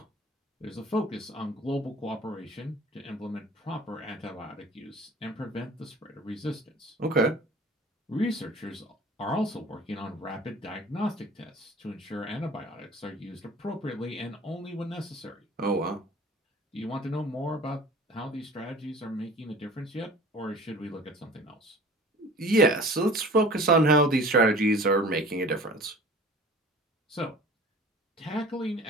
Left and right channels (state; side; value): normal; both; correlation 0.44